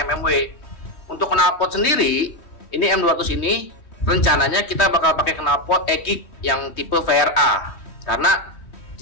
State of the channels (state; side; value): late; right; 3.2 ms